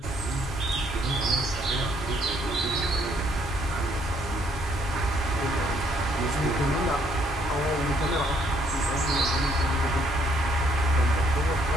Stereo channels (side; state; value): both; normal; correlation 0.67